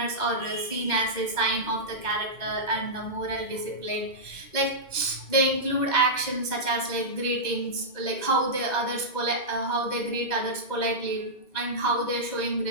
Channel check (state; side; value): late; right; 2.1 ms